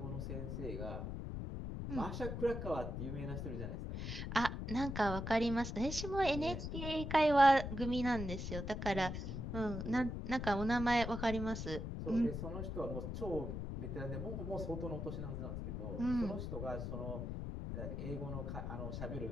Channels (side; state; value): left; noise; rumble, 4 dB below the sound